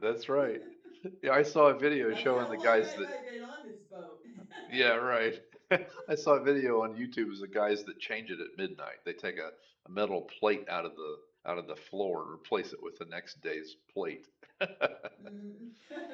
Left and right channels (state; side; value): identical; both; correlation 1.00